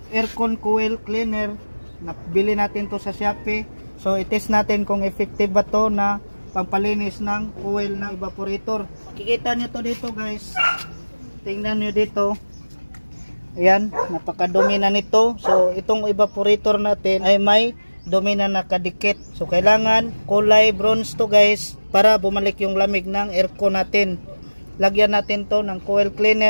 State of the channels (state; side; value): inverted; both; correlation -1.00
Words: aircon coil cleaner. Nabili natin to sa Shopee. So i-test natin kung effective ba to na pampalinis ng coil ng evaporator. Kikita nyo to dito guys. Tingnan nyo dito. Ayan, napakadumi na nito. So itong evaporator natin ay may dumi na nakadikit. So kailangan kulay bronze to guys para bumalik yung lamig ng aircon natin. Lagyan natin to ng coil